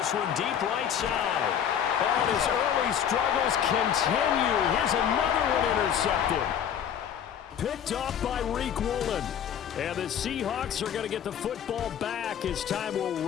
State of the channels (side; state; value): right; quieter; 9.0 dB